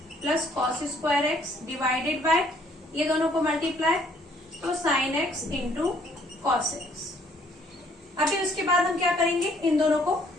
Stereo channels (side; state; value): both; normal; correlation 0.63